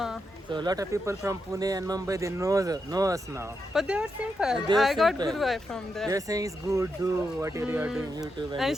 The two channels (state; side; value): normal; both; correlation 0.84